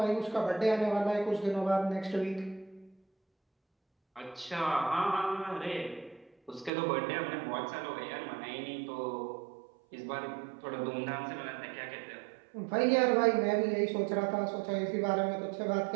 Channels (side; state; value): left; drops out; at 6.7 s